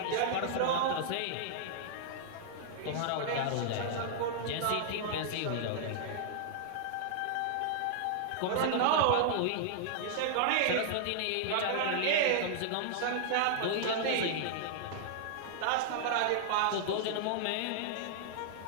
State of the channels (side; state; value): both; different; correlation -0.01